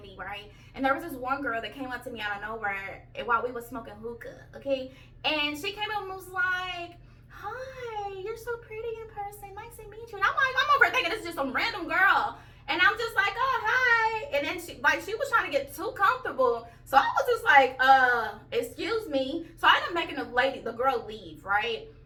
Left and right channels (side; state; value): both; identical; correlation 1.00